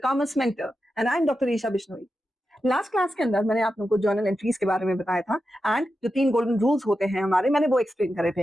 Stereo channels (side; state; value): both; normal; correlation 0.90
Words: Mentor, and I'm Dr. Isha Bishnoi. Last class के अंदर मैंने आप लोगों को जर्नल एंट्रीज के बारे में बताया था एंड जो 3 गोल्डन रूल्स होते हैं हमारे मैंने वो एक्सप्लेन करे थे।